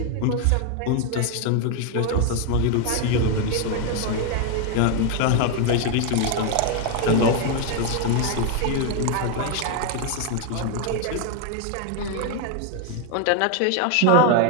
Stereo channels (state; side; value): different; both; correlation 0.01